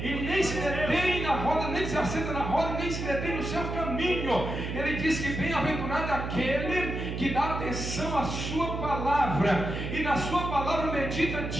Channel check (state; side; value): noise; right; hum, 4 dB below the sound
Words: e nem se detém na roda, nem se assenta na roda, nem se detém no seu caminho. Ele diz que bem-aventurado é aquele que dá atenção à sua palavra, e na sua palavra medita